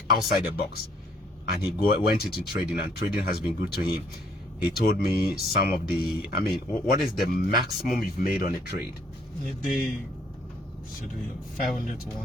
outside the box. And he went into trading, and trading has been good to him. He told me some of the, what is the maximum you've made on a trade? In a day, should be 500 to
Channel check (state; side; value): normal; both; correlation 0.64